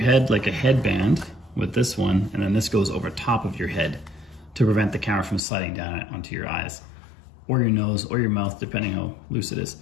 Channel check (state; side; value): drops out; right; at 5.4 s